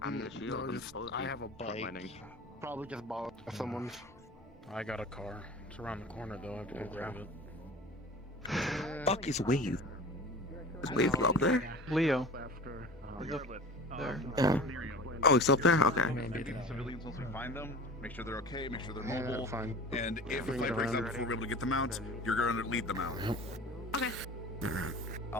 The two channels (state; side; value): normal; both; correlation 0.38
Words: I'm the shield. no, I'm just, supposed to I be have a bike. frontlining. Probably just borrowed someone's. I got a car. It's around the corner though. I have to go grab it. Fuck is Wave? Is Wave up there? Leo. There. Oh, it's up there? Okay. Maybe the civilians once we find them, make sure they're okay, make sure they're Yeah, mobile. fine. And if the Bring fight it breaks out around. before we're able to get them out, you're going to lead them out. Okay.